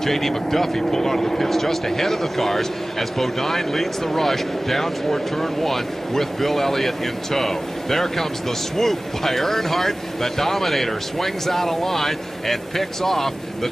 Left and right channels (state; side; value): normal; both; correlation 0.98